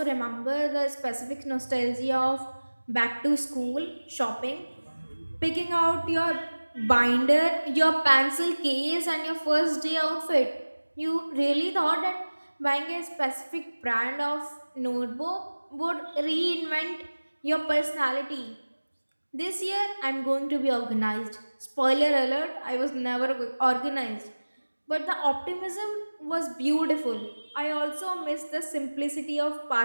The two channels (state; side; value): inverted; both; correlation -1.00